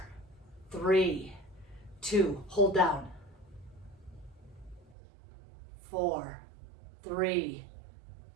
3, 2, hold down. 4, 3,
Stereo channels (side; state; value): left; drops out; at 5.0 s